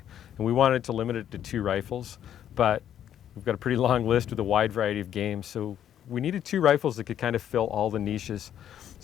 and we wanted to limit it to 2 rifles, but we've got a pretty long list with a wide variety of games, so we needed 2 rifles that could kind of fill all the niches.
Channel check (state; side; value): quieter; right; 10.3 dB